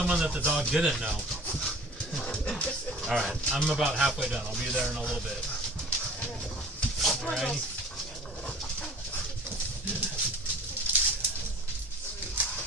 that the dog didn't know. Alright, I'm about halfway done. I'll be there in a little bit. Alrighty.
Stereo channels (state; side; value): normal; both; correlation 0.46